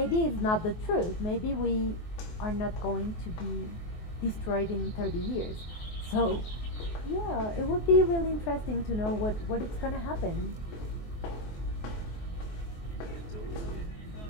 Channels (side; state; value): right; late; 24 ms